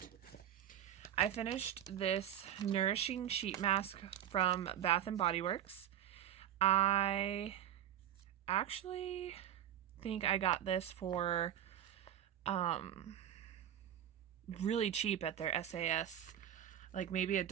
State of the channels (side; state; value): left; quieter; 10.7 dB